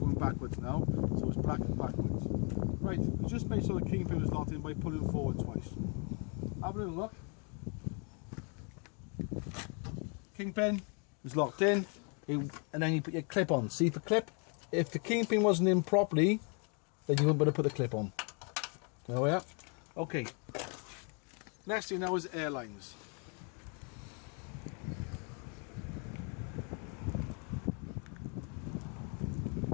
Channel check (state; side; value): quieter; right; 37.0 dB